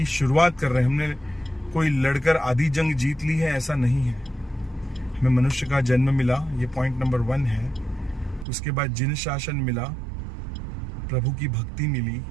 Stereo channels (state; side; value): drops out; left; at 8.5 s